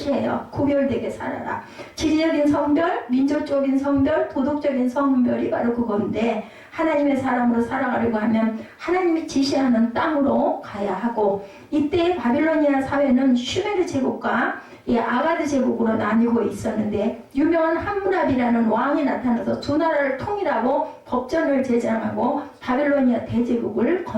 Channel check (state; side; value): identical; both; correlation 1.00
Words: 구별되게 살아라. 지리적인 성별, 민족적인 성별, 도덕적인 성별이 바로 그건데 하나님의 사람으로 살아가려고 하면 하나님이 지시하는 땅으로 가야 하고 이때 바빌로니아 사회는 슈메르 제국과 아가드 제국으로 나뉘고 있었는데 유명한 함무라비라는 왕이 나타나서 두 나라를 통일하고 법전을 제정하고 바빌로니아 대제국을